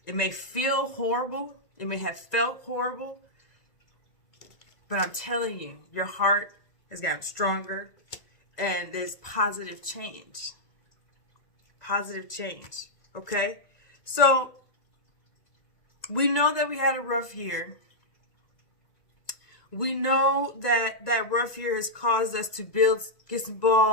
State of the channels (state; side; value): late; right; 1.9 ms